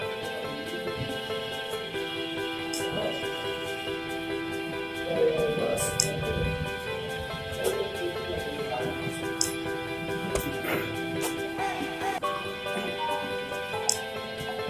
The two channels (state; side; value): identical; both; correlation 1.00